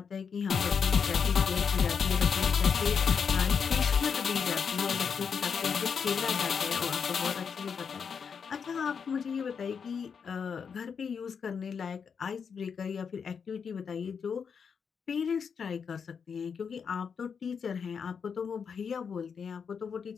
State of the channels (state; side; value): quieter; right; 6.4 dB